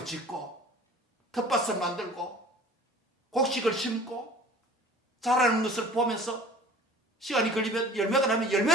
짓고 텃밭을 만들고 곡식을 심고 자라는 것을 보면서 시간이 걸리면 열매가 나면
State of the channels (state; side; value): normal; both; correlation 0.45